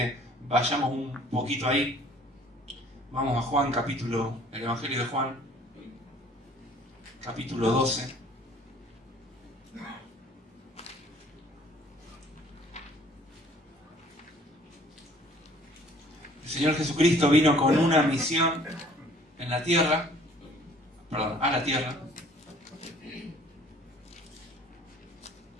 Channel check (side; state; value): both; normal; correlation 0.55